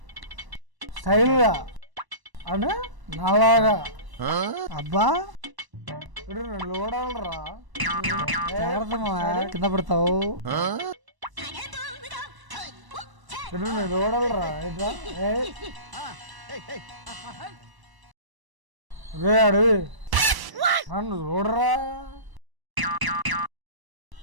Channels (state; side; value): late; left; 1.0 ms